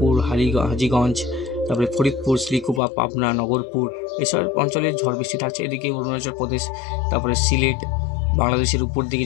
হাজীগঞ্জ, তারপরে ফরিদপুর, শ্রীকুপা, পাবনা, নগরপুর, এসব অঞ্চলে ঝড় বৃষ্টি থাকছে। এদিকে অরুণাচল প্রদেশ, তারপরে সিলেট, বাংলাদেশের উপর দিকে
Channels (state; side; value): drops out; right; at 2.8 s